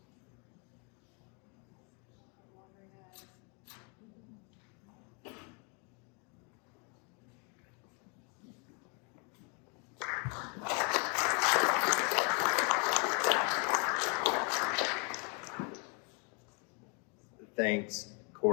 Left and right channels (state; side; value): quieter; right; 34.9 dB